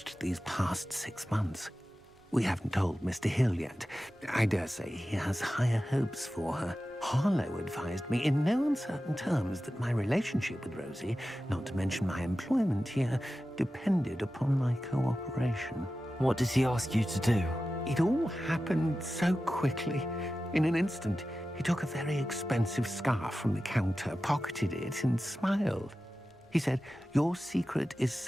these past 6 months. We haven't told Mr. Hill yet. I dare say he has higher hopes for her. Harlow advised me in no uncertain terms that my relationship with Rosie, not to mention my employment here, depended upon my cooperation. What does he ask you to do? It all happened so quickly. In an instant, he took a very expensive scarf from the counter, pocketed it, and smiled. He said, "Your secret is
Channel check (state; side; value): normal; both; correlation 0.94